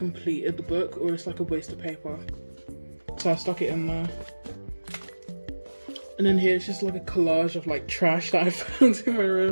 the book, or it's like a waste of paper. So I stuck it in there. And then here it's just like a collage of like trash that I found in my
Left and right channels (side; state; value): both; inverted; correlation -1.00